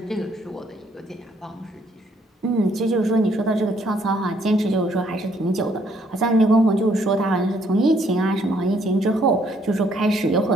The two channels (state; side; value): normal; both; correlation 0.67